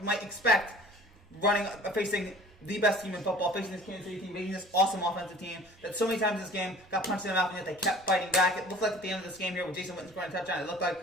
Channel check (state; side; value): normal; both; correlation 0.46